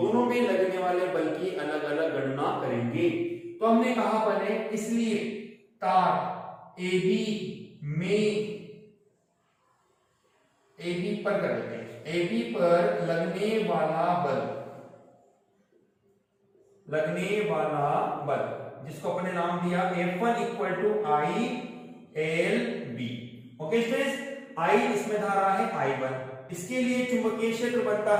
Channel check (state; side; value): identical; both; correlation 1.00